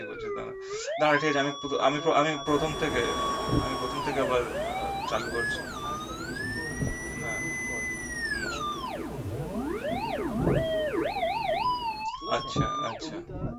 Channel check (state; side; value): identical; both; correlation 1.00